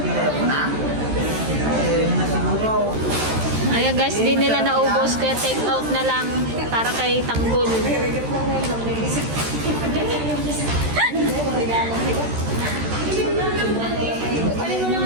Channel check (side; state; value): left; late; 13 ms